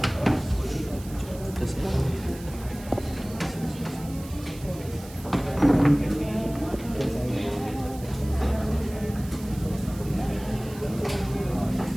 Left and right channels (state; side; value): noise; right; hiss, 18 dB below the sound